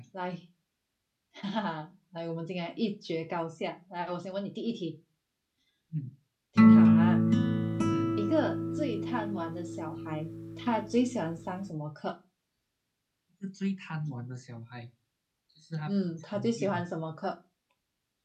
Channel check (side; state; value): both; identical; correlation 1.00